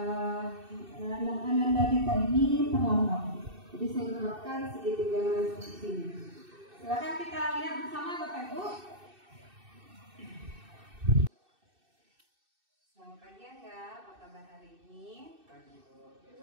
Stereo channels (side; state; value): left; late; 2.6 ms